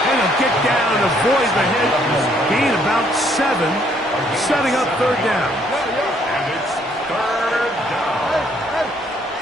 And he'll get down, avoid the hit. Gain about 7. Setting up 3rd down. And it's 3rd down.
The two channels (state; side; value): normal; both; correlation 0.67